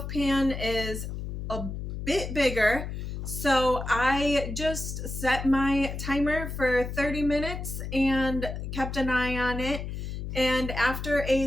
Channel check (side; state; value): left; noise; hum, 6 dB below the sound